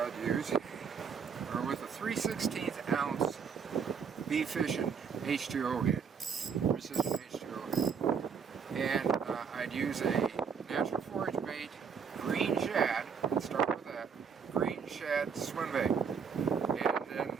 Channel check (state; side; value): quieter; left; 6.4 dB